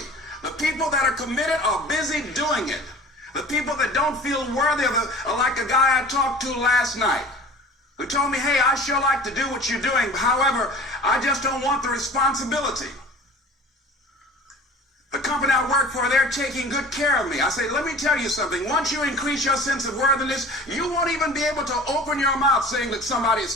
The people that are committed are busy doing it. The people that don't feel worthy are like a guy I talked to last night who told me, hey, I sure like to do what you're doing. However, I just don't want the responsibility. The company I work for, they're taking good care of me. I say, let me tell you something. Once you increase your sense of worthiness, you won't even be able to open your mouth saying that somebody is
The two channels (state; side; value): normal; both; correlation 0.42